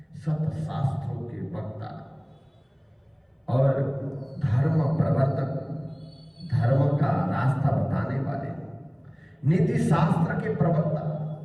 सत शास्त्रों के वक्ता और धर्म प्रवर्तक, धर्म का रास्ता बताने वाले, नीति शास्त्र के प्रवक्ता,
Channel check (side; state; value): both; identical; correlation 1.00